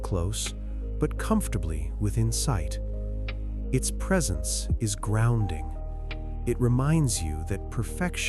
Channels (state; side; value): identical; both; correlation 1.00